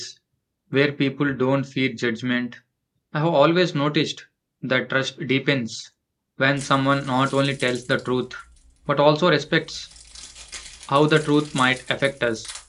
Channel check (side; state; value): both; identical; correlation 1.00